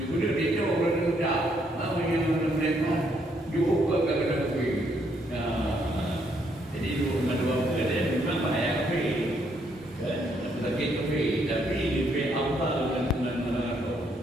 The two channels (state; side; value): normal; both; correlation 0.72